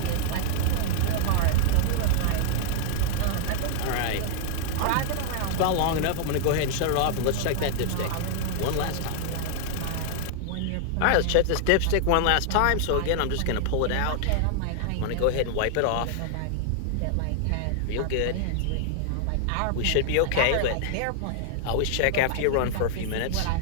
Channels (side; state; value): both; different; correlation -0.01